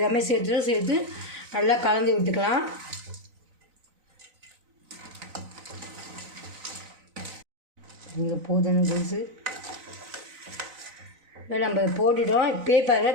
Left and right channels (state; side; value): late; left; 4.0 ms